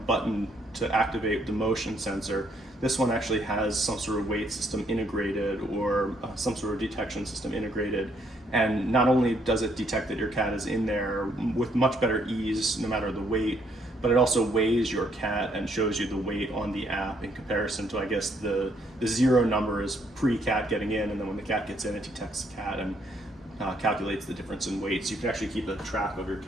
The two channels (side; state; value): both; normal; correlation 0.70